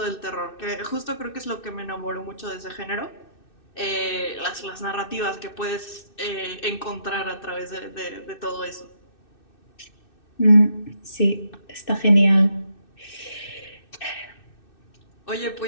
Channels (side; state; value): right; late; 2.6 ms